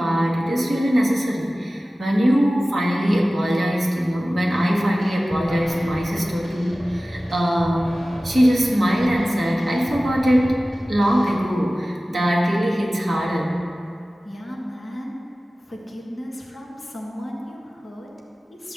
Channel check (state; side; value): normal; both; correlation 0.97